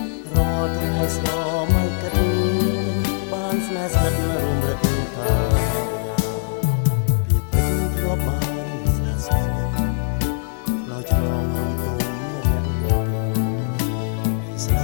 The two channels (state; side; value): silent; right; 65 dB below the other